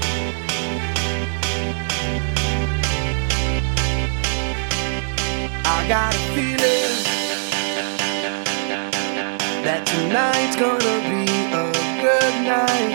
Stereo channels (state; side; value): silent; left; 65 dB below the other